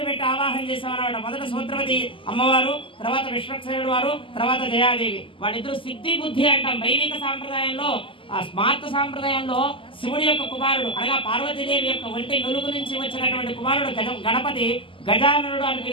ఆవాహన చేసామన్నమాట మొదట సూత్రవతి అమ్మవారు తర్వాత విశ్వక్సేనుడు వారు తర్వాత జయాదేవి వాళ్ళిద్దరు సిద్ధి బుద్ధి అంటాం వైదిక సాంప్రదాయంలో ఆ స్మార్త సాంప్రదాయంలో శివుడి యొక్క కుమారుడు అనగా పార్వతీదేవి యొక్క ఒంటి నులుగు నుంచి వచ్చినటువంటి కుమారుడు గణపతి గజాననుడు అని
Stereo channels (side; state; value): right; late; 0.25 ms